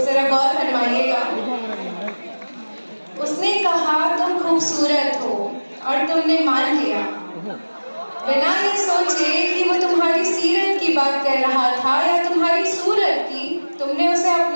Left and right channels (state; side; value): inverted; both; correlation -1.00